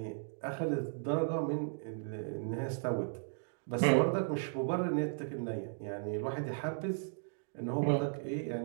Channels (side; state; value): left; silent; digital silence